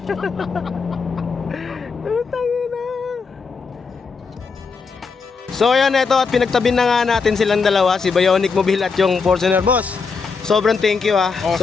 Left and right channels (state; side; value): quieter; right; 5.0 dB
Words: So ayan, ito at pinagtabi na nga natin silang dalawa, si Bionic Mobile at yung Fortuner boss. Sobrang thank you ha.